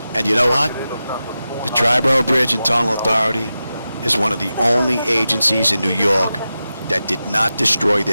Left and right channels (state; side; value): inverted; both; correlation -0.92